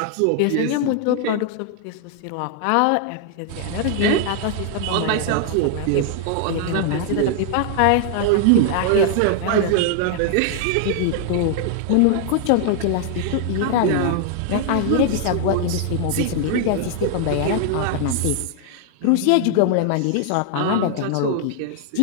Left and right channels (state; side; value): different; both; correlation 0.00